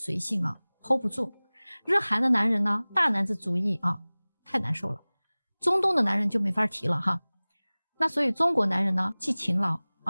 性了 hold 不住，日韩的男人呢大男子主义啊，太难受了。中东的男人就没法提了哈。那所以中国男人呢既勤劳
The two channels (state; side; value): inverted; both; correlation -1.00